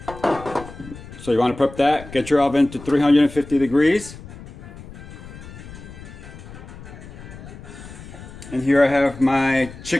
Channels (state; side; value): noise; left; rumble, 15 dB below the sound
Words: So you want to prep that. Get your oven to 350 degrees. And here I have my